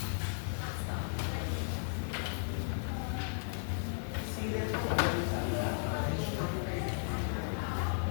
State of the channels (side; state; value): right; silent; 54 dB below the other